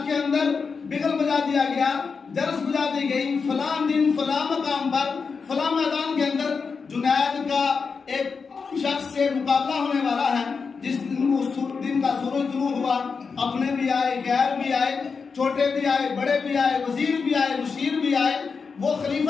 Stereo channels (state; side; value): quieter; right; 5.2 dB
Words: کے اندر بگل بجا دیا گیا، جرس بجا دی گئی. فلاں دن فلاں مقام پر فلاں میدان کے اندر جنید کا ایک شخص سے مقابلہ ہونے والا ہے. جس دن کا سورج طلوع ہوا، اپنے بھی آئے، غیر بھی آئے، چھوٹے بھی آئے، بڑے بھی آئے، وزیر بھی آئے، مشیر بھی آئے، وہ